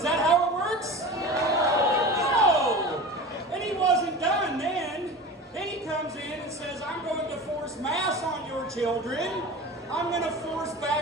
that how it works? No! And he wasn't done then. Then he comes in and says, I'm going to force masks on your children. I'm going to force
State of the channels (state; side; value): normal; both; correlation 0.32